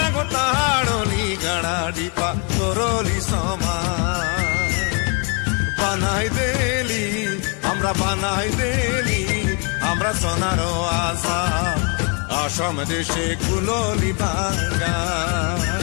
গো তাড়লি গাড়া ডিপা করলি সমান বানাই দেলি আমরা বানাই দেলি আমরা সোনারো আসাম আসাম দেশে কুলোলি বাগান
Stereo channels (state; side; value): quieter; right; 35.5 dB